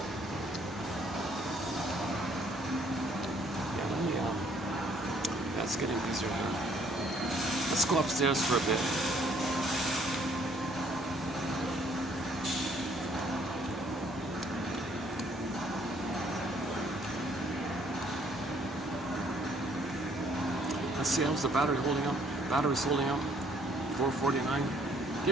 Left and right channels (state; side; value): normal; both; correlation 0.63